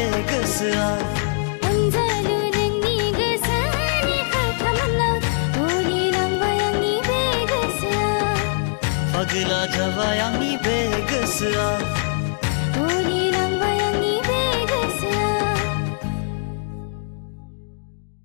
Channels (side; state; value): right; silent; 64 dB below the other